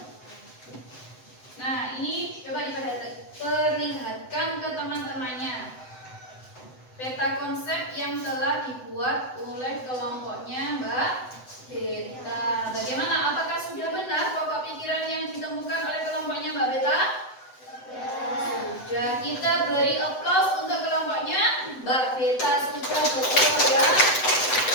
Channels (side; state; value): right; late; 7.9 ms